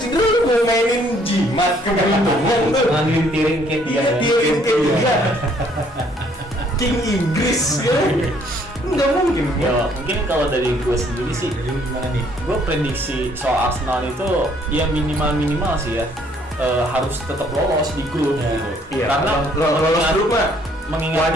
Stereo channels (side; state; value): both; normal; correlation 0.64